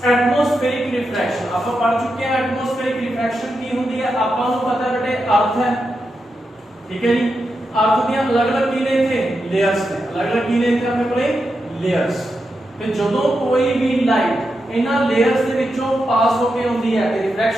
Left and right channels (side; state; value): both; normal; correlation 0.87